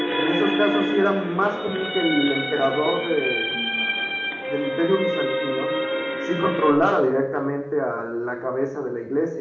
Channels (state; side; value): identical; both; correlation 1.00